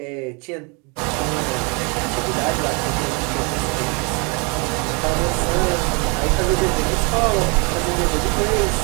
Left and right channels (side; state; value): left; quieter; 32.0 dB